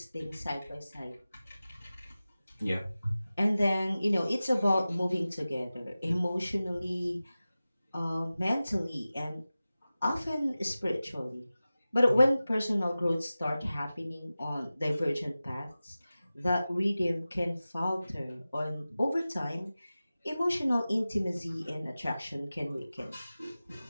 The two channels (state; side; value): inverted; both; correlation -0.96